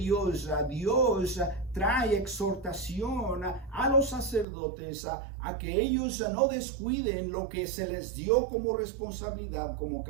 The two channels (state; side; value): drops out; left; at 4.5 s